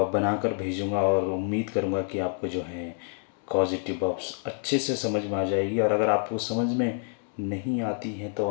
बनाकर भेजूँगा और उम्मीद करूँगा कि आपको जो है कॉजेटिव वर्ब्स अच्छे से समझ में आ जाएगी। और अगर आपको समझ में नहीं आती हैं तो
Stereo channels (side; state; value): right; silent; 57 dB below the other